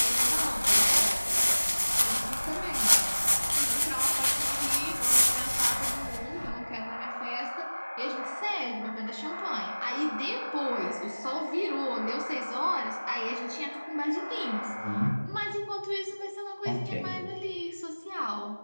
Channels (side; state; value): both; inverted; correlation -1.00